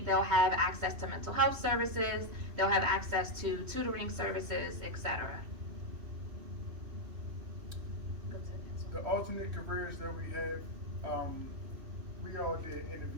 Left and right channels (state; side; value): late; left; 3.1 ms